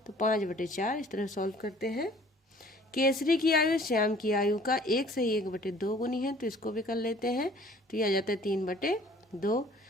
तो 5/4 इस तरह सॉल्व करते हैं। केसरी की आयु श्याम की आयु का 1 सही 1/2 गुनी है, तो इसको भी कर लेते हैं। तो ये आ जाता है 3/2।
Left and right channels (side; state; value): both; normal; correlation 0.53